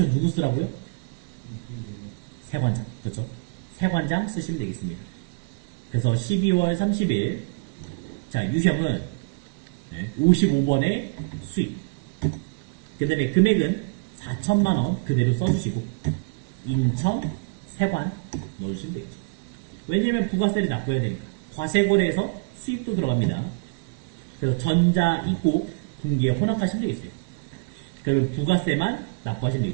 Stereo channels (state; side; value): quieter; left; 35.2 dB